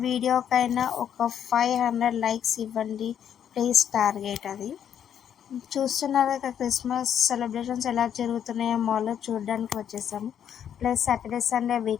వీడియోకైనా ఒక 500 లైక్స్ ఇవ్వండి ప్లీజ్. టార్గెట్ అది. చూస్తున్నారు కదా, క్రిస్మస్ సెలబ్రేషన్స్ ఎలా జరుగుతున్నాయో మాల్లో చూడడానికి వచ్చేసాము. ప్లస్ సాటర్డే సండే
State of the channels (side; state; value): right; quieter; 9.1 dB